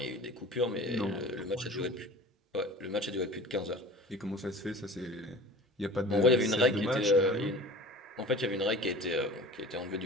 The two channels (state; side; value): normal; both; correlation 0.41